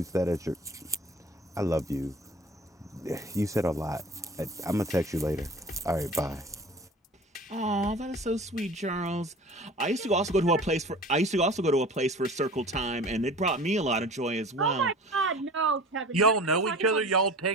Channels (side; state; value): both; normal; correlation 0.41